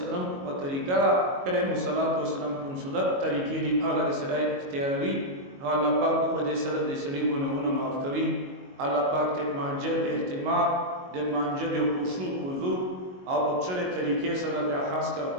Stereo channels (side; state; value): left; late; 22 ms